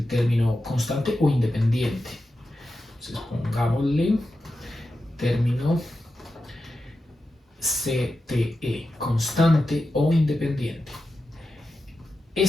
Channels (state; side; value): normal; both; correlation 0.90